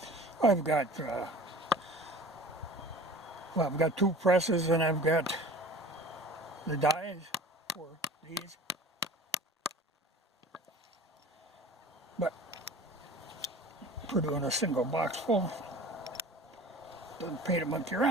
I've got, I've got 2 presses and I've got the dies for these. But for doing a single box full, doesn't pay to monkey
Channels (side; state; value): both; normal; correlation 0.41